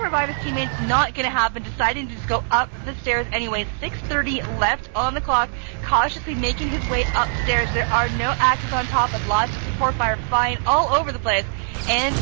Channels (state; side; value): silent; left; digital silence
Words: revive his teammates. Not going to happen. Deciding to just go up the stairs anyway. 6:30 left on the clock. Cautiously making his way upstairs. There are no axes on top, and lots of support fire flying all over the place. And